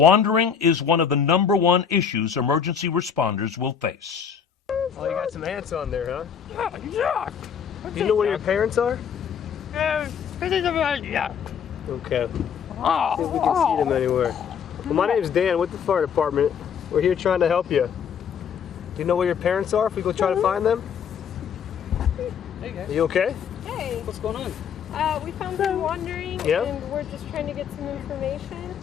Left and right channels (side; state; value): right; quieter; 7.3 dB